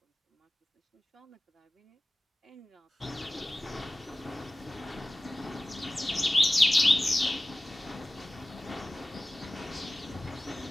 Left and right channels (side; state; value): both; normal; correlation 0.95